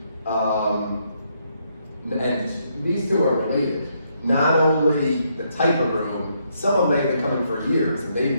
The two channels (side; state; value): both; inverted; correlation -0.75